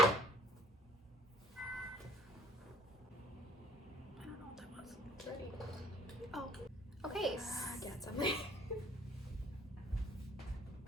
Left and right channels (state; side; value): normal; both; correlation 0.56